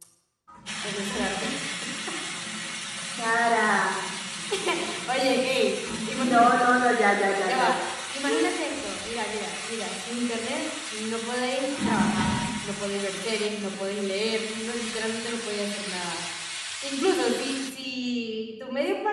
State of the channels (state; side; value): identical; both; correlation 1.00